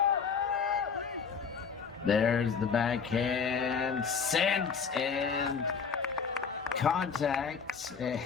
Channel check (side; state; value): right; quieter; 6.1 dB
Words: There's the backhand sent and contact